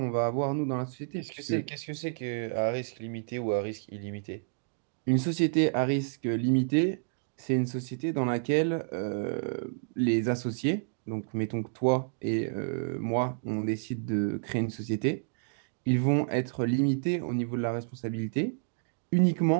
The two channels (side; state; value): left; silent; digital silence